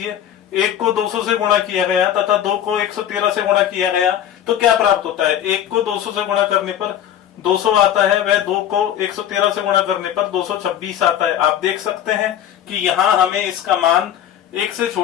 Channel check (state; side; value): quieter; right; 10.6 dB